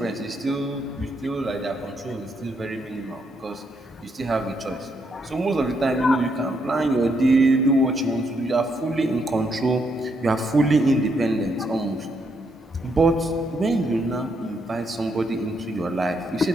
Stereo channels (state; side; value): normal; both; correlation 0.76